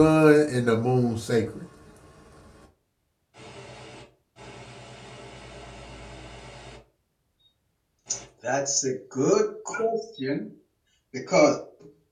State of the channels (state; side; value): identical; both; correlation 1.00